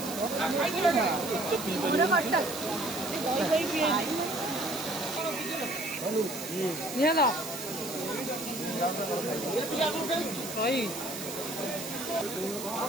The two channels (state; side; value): noise; right; hiss, 9 dB below the sound